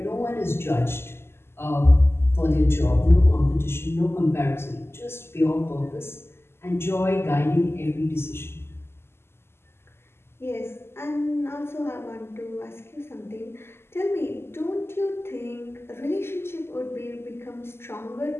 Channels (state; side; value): late; right; 0.12 ms